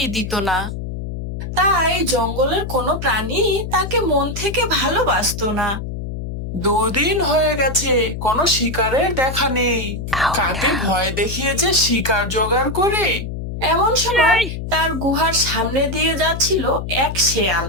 দিত না। তাই জঙ্গলের কোনো প্রাণী তাকে মন থেকে ভালোবাসতো না। দুদিন হয়ে গেছে, কোনো শিকারের দেখা নেই। কাকে ভয় দেখিয়ে যে শিকার জোগাড় করে। এমন সময় তার গুহার সামনে দিয়ে যাচ্ছিল এক শেয়াল।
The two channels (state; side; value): noise; left; hum, 6 dB below the sound